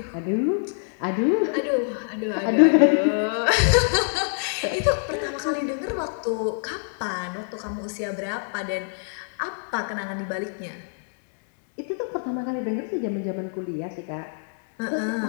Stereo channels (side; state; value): right; silent; digital silence